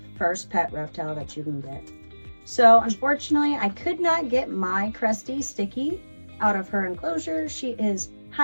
first pet reptile that you can get. So unfortunately, I could not get my Cresty Sticky out of her enclosure. She is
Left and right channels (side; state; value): both; inverted; correlation -1.00